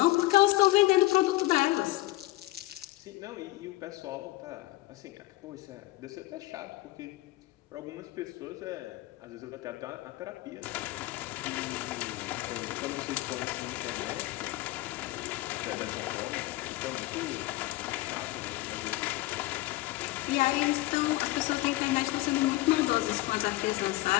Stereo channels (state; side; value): quieter; right; 19.0 dB